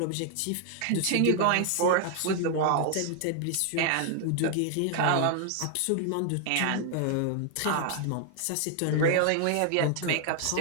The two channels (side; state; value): both; different; correlation 0.00